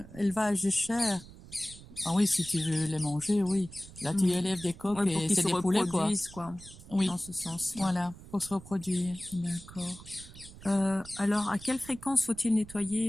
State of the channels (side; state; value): right; noise; rumble, 18 dB below the sound